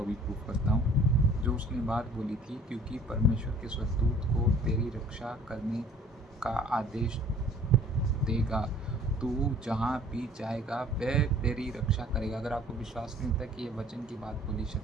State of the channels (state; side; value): normal; both; correlation 0.52